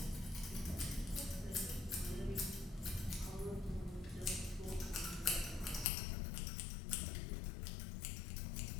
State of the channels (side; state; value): right; drops out; at 5.9 s